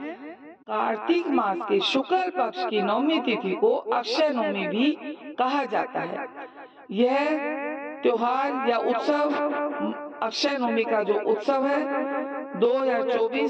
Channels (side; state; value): both; identical; correlation 1.00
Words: कार्तिक मास के शुक्ल पक्ष की नवमी तिथि को अक्षय नवमी भी कहा जाता है। यह त्योहार या उत्सव अक्षय नवमी का जो उत्सव है